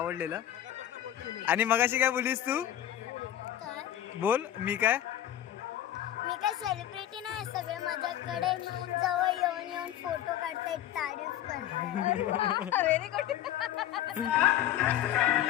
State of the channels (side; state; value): right; quieter; 12.0 dB